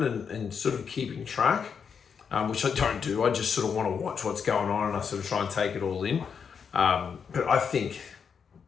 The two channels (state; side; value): quieter; right; 6.6 dB